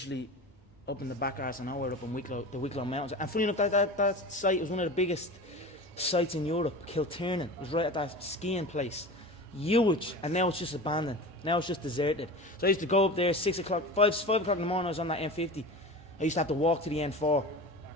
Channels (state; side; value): normal; both; correlation 0.32